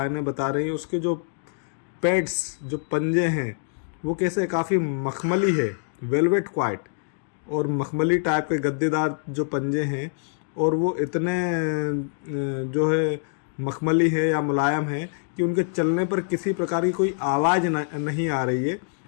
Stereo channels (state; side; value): silent; right; digital silence